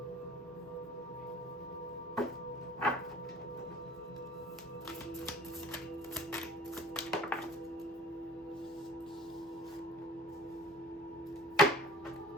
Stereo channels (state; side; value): normal; both; correlation 0.44